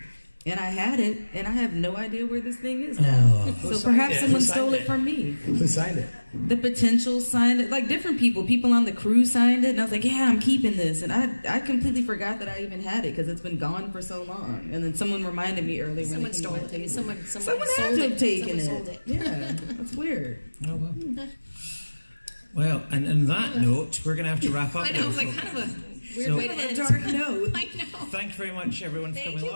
and I had it, and I have no idea where this thing is now. So perhaps someone stole it from me. Who signed it? The potential signed it, like different people. People on the crew signed it, and I was like, "Yeah, I'm keeping this." And I completely forgot that I even had it because it's been gone for so long. And then someone reminded me earlier when Someone stole it. Someone had sold to it. have taken Someone it. sold it. Yeah, that's weird. Oh well. Well, and on that note, we're going to have to wrap up. I know, it was like kind of a weird way to end. Dark note. I know. Thank you very much, everyone, for coming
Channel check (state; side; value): inverted; both; correlation -1.00